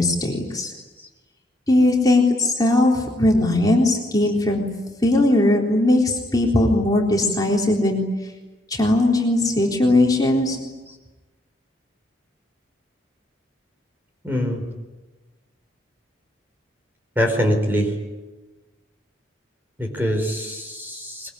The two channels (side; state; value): both; normal; correlation 0.74